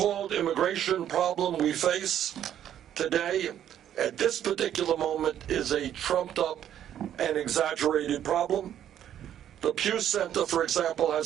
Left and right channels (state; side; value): quieter; left; 10.5 dB